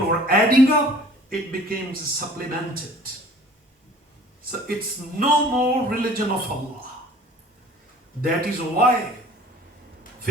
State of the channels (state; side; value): normal; both; correlation 0.49